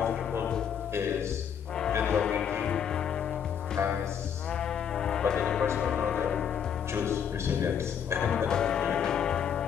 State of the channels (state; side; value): quieter; right; 8.1 dB